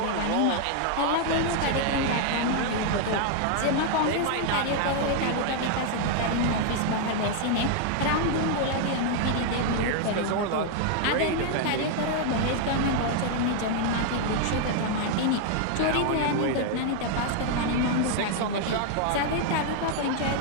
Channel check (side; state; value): both; different; correlation 0.00